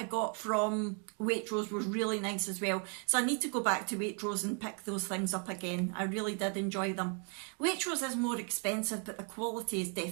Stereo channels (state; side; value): quieter; left; 39.3 dB